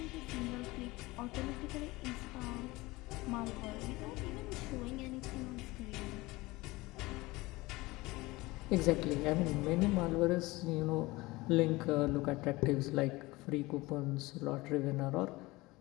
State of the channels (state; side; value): quieter; right; 21.1 dB